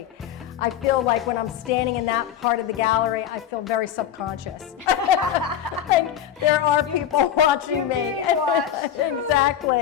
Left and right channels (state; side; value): quieter; right; 10.0 dB